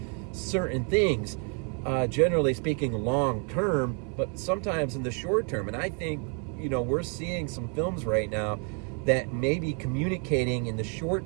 certain things, generally speaking, long term, but sometimes in the short term. And I think, we're seeing some films right now that may be communicating in the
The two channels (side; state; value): left; quieter; 38.7 dB